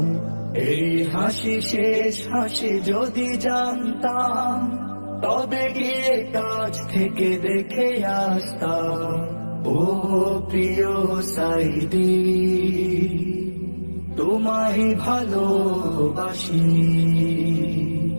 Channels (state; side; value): inverted; both; correlation -1.00